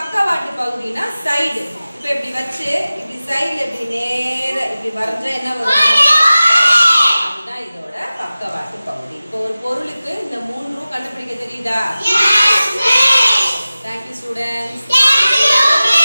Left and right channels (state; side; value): inverted; both; correlation -0.96